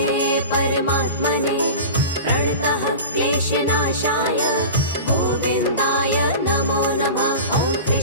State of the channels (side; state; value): both; inverted; correlation -0.32